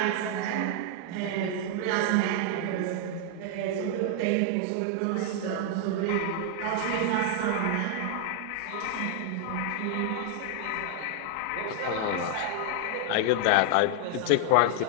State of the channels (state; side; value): different; both; correlation 0.00